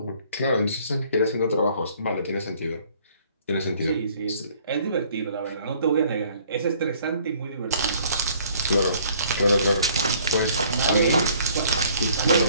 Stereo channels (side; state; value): both; inverted; correlation -0.58